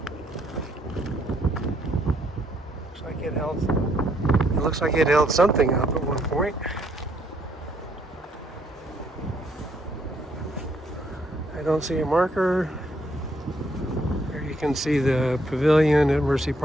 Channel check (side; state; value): both; normal; correlation 0.70